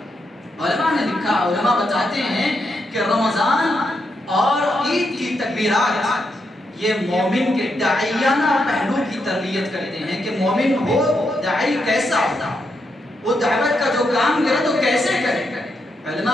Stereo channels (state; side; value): normal; both; correlation 0.82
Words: علماء نے لکھا، علماء بتاتے ہیں کہ رمضان اور عید کی تکبیرات یہ مومن کے داعیانہ پہلو کی تربیت کرتے ہیں کہ مومن ہو، داعی کیسا ہوتا، وہ دعوت کا جو کام کرے تو کیسے کرے۔ علماء